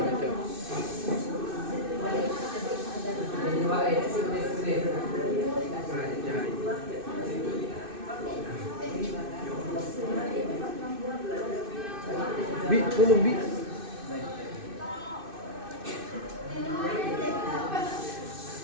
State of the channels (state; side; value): late; left; 2.6 ms